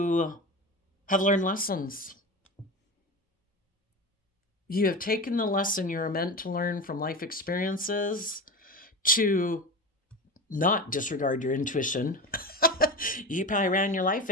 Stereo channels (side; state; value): both; normal; correlation 0.26